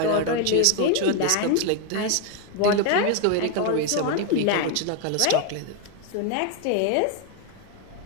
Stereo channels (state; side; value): different; both; correlation 0.01